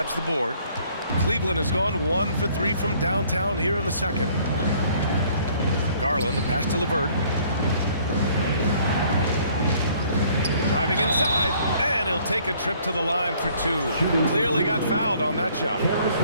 the board. Cleveland has gone 1 for 3 from downtown here in the second. Garland, the pass to LeVert. Driving inside, and he'll take a trip to the line for 2. Clearly got fouled on that shot.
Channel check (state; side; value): inverted; both; correlation -0.60